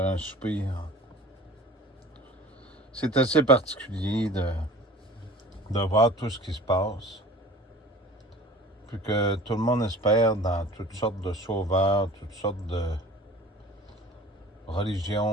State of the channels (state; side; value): normal; both; correlation 0.43